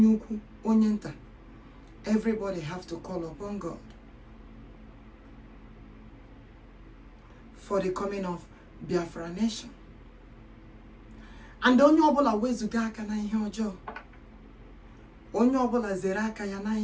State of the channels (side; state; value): both; identical; correlation 1.00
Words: ukwu, onye nta, everybody have to call upon God for the coming of Biafra Nation. And onye ọbụla wezuga aka na ihe ọjọọ. Onye ọbụla zere aka ya na